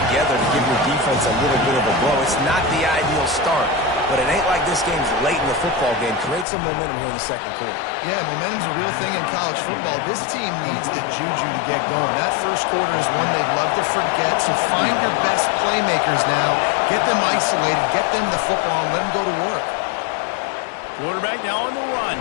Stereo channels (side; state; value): right; drops out; at 6.5 s